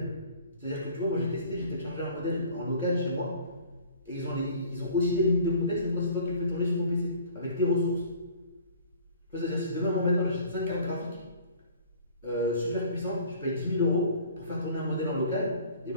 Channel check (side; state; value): both; inverted; correlation -0.49